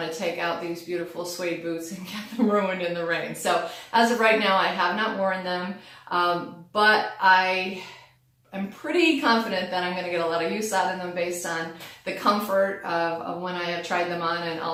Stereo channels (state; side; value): identical; both; correlation 1.00